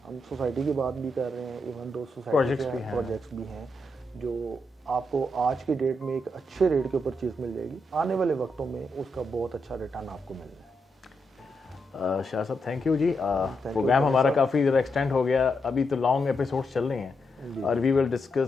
ہم سوسائٹی کی بات بھی کر رہے ہیں, ایون دو سوسائٹی پروجیکٹس بھی ہیں جو آپ کو آج کی ڈیٹ میں ایک اچھے ریٹ کے اوپر چیز مل جائے گی, آنے والے وقتوں میں اس کا بہت اچھا ریٹرن آپ کو مل جائے. شاہ صاحب تھینک یو جی, پروگرام ہمارا کافی زیادہ ایکسٹینڈ ہو گیا, ابھی تو لانگ ایپیسوڈس چل رہے ہیں, اور وی ول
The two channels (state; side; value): normal; both; correlation 0.83